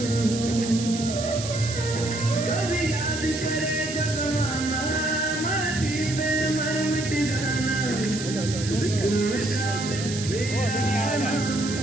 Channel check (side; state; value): right; noise; hiss, 8 dB below the sound